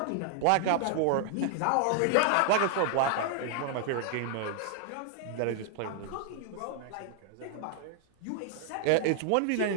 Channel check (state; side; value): different; both; correlation 0.00